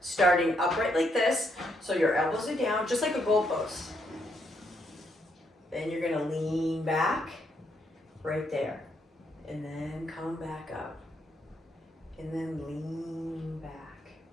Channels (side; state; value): both; normal; correlation 0.76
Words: upright like this, so your elbows are down, just like a goalpost. Then you're gonna lean back, right there, and then come back up, and then lean back,